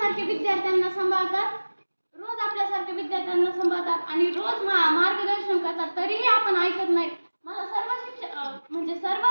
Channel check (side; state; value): both; inverted; correlation -1.00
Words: विद्यार्थ्यांना सांभाळतात आणि रोज मार्गदर्शन करतात, तरीही आपण ऐकत नाही। मला सर्व